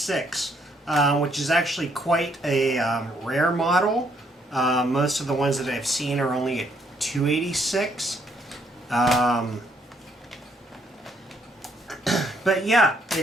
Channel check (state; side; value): normal; both; correlation 0.70